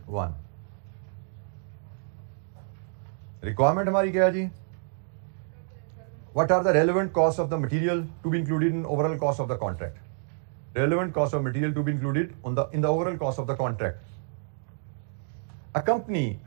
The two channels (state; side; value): silent; left; digital silence